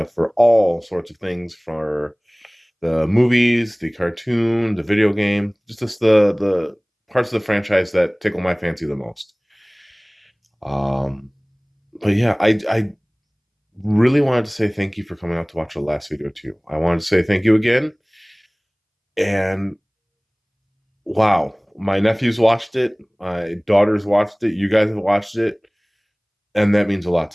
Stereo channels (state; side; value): identical; both; correlation 1.00